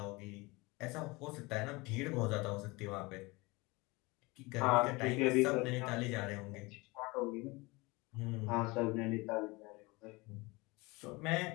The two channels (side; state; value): right; quieter; 24.1 dB